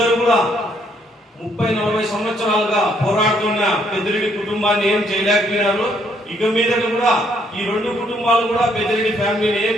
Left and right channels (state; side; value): normal; both; correlation 0.69